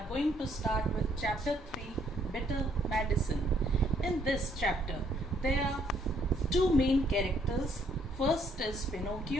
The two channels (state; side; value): normal; both; correlation 0.67